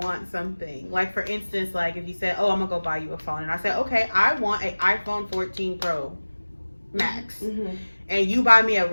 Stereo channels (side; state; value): both; inverted; correlation -1.00